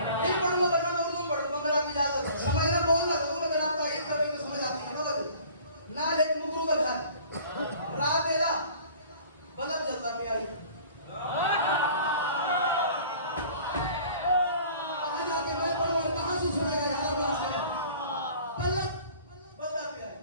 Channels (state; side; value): inverted; both; correlation -0.48